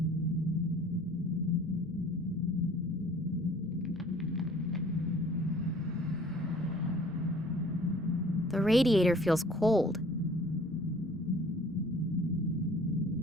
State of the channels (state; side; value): normal; both; correlation 0.52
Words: The radiator feels cold.